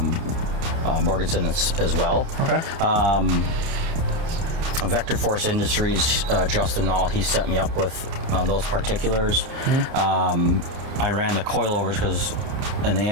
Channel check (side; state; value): left; late; 30 ms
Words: Borgeson as well. Okay. Vector Force Industries, Justin Nall, he set me up with those particulars. I ran the coilovers and the